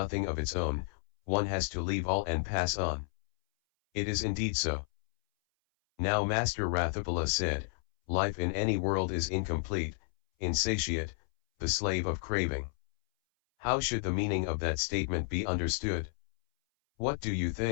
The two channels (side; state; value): right; silent; 57 dB below the other